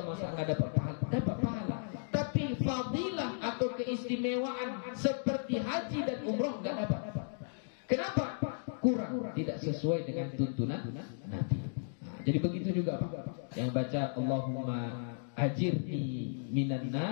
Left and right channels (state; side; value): silent; right; digital silence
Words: masa nggak dapat pahala? Dapat pahala. Tapi fadilah atau keistimewaan seperti haji dan umroh nggak dapat. Kenapa? Kurang, tidak sesuai dengan tuntunan Nabi. Nah, jadi begitu juga Pak. Yang baca Allahumma ajirni minan